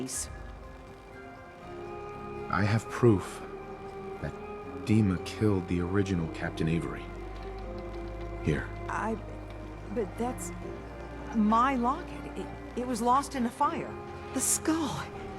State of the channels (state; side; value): identical; both; correlation 1.00